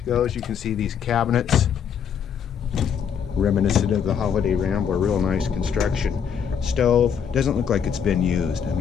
goes, you can see these cabinets, reminiscent of the Holiday Rambler. Real nice construction. Stove doesn't look like it's been used. I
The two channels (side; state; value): right; quieter; 7.6 dB